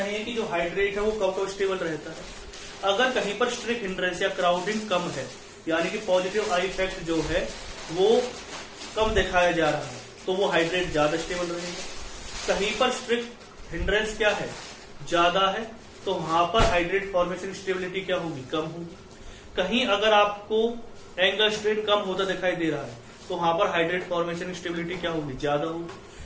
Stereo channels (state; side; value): identical; both; correlation 1.00